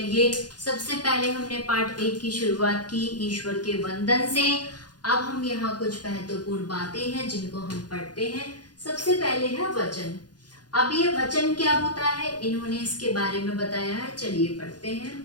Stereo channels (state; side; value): late; right; 0.69 ms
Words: सबसे पहले हमने पाठ 1 की शुरुआत की ईश्वर के वंदन से। अब हम यहाँ कुछ महत्वपूर्ण बातें हैं जिनको हम पढ़ते हैं। सबसे पहले है वचन। अब ये वचन क्या होता है इन्होंने इसके बारे में बताया है। चलिए पढ़ते